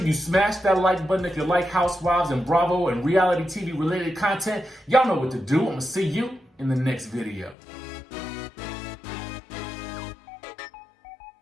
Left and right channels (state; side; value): drops out; right; at 7.6 s